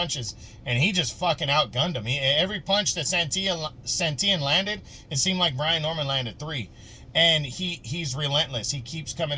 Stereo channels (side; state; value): both; identical; correlation 1.00